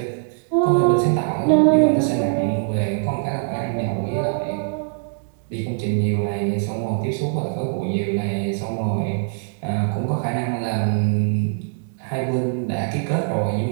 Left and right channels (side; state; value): left; silent; digital silence